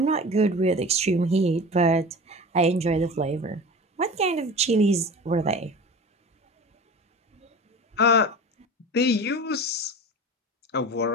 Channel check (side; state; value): both; normal; correlation 0.35